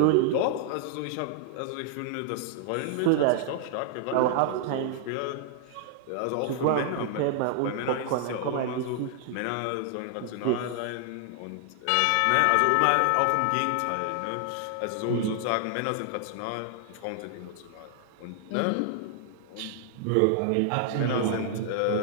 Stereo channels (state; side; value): different; both; correlation 0.00